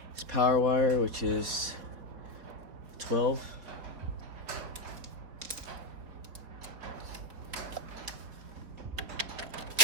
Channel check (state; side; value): late; left; 4.2 ms